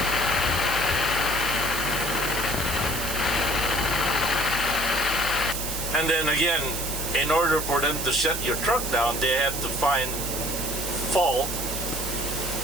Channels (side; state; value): right; noise; hiss, 4 dB below the sound